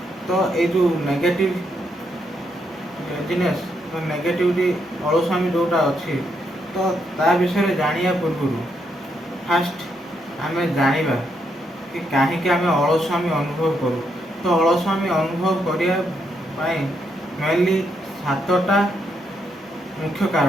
ତ ଏଇ ଯେଉଁ ନେଗେଟିଭ୍ ଲେଜିନେସ୍ ବା ନେଗେଟିଭିଟି ଅଳସୁଆମୀ ଯେଉଁଟା ଅଛି, ତ ତା ବିଷୟରେ ଜାଣିବା ପୂର୍ବରୁ ଫାଷ୍ଟ ଆମେ ଜାଣିବା କି କାହିଁକି ଆମେ ଅଳସୁଆମୀ ଅନୁଭବ କରୁ। ତ ଅଳସୁଆମୀ ଅନୁଭବ କରିବା ପାଇଁ ମେନଲି 7ଟା ମୁଖ୍ୟ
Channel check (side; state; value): both; normal; correlation 0.78